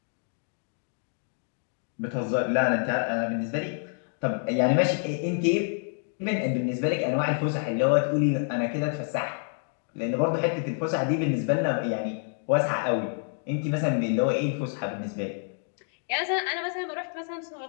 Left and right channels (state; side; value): silent; right; 59 dB below the other